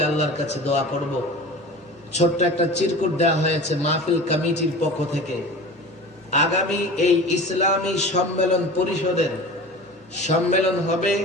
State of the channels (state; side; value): normal; both; correlation 0.36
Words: আল্লাহর কাছে দোয়া করব। ছোট্ট একটা চিরকুট দেওয়া হয়েছে মাহফিল কমিটির পক্ষ থেকে। আগামী এই ইসলামী সম্মেলন পরিষদের সম্মেলন হবে